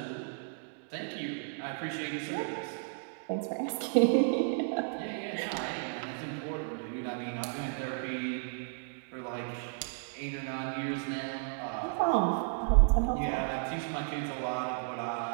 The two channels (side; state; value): left; silent; digital silence